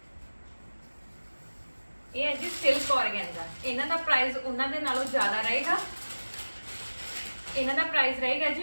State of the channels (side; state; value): both; inverted; correlation -1.00